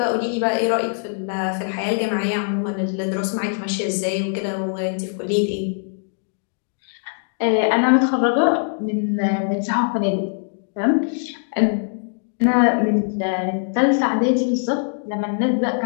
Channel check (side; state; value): right; silent; digital silence